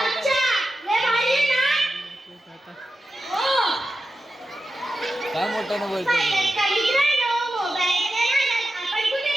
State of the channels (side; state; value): both; normal; correlation 0.91